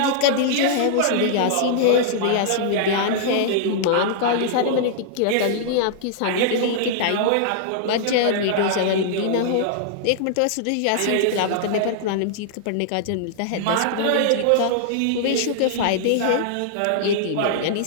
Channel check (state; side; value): different; both; correlation -0.01